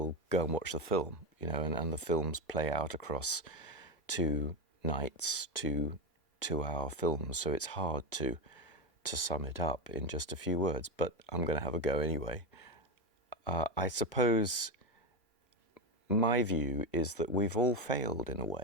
go and watch the film, and the films play out across 2 nights, 2-hour films, so it's hard to sum it up in just a few words, but I'm going to have a go anyway. I suppose my view is that we've all failed in a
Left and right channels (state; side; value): normal; both; correlation 0.12